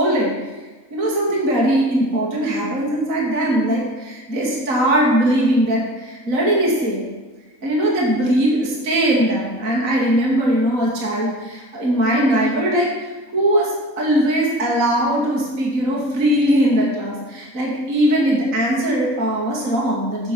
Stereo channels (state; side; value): late; left; 3.9 ms